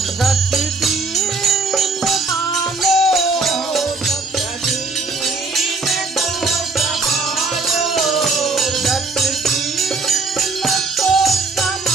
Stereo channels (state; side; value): quieter; left; 3.8 dB